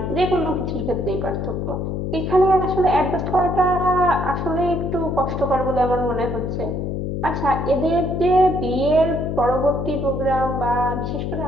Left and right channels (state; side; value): noise; left; hum, 3 dB below the sound